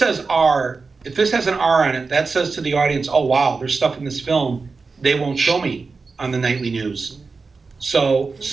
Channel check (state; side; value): quieter; left; 4.3 dB